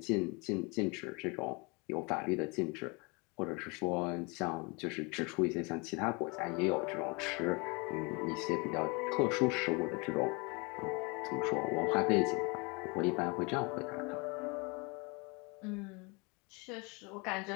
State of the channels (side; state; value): right; quieter; 29.2 dB